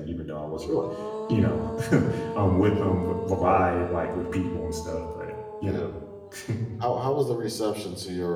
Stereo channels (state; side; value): identical; both; correlation 1.00